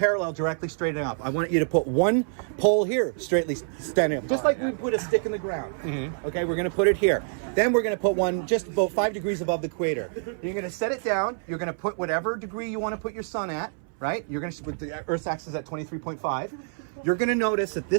directly straight up. I want you to put one pole here, straightly standing up. Just like we put a stick in the ground. Okay, we're going to put it here. Then we're going to put one just about 5 degrees above the equator. You're going to set it down. You're going to put whatever degree you want to put your sun at, right? You're going to, with the Earth's axis at 23.5. You're going to notice that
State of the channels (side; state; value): left; silent; 60 dB below the other